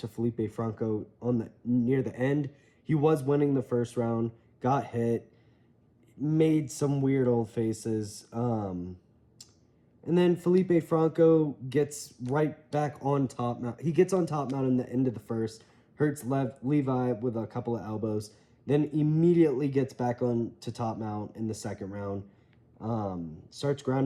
Felipe Franco near the end. He was winning the first round, got hit, made some weird old faces, and then Felipe Franco gets right back on top mount. He gets on top mount in the end of the first, hurts Levi with a couple of elbows, then immediately gets back on to top mount in the second round. Starts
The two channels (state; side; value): identical; both; correlation 1.00